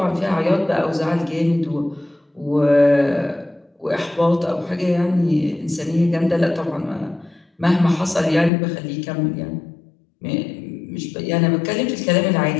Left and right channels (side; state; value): right; drops out; at 8.5 s